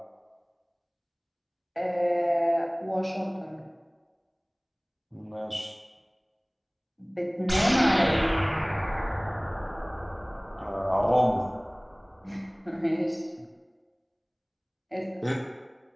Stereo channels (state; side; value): identical; both; correlation 1.00